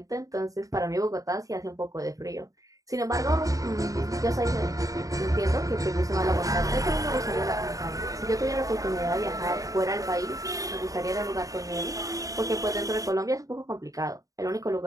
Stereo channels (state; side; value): late; left; 0.17 ms